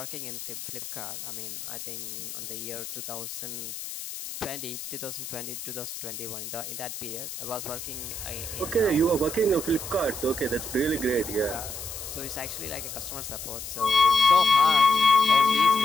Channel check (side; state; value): left; noise; hiss, 9 dB below the sound